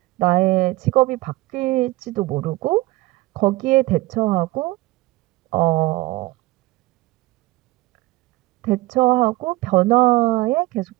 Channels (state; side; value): quieter; left; 19.4 dB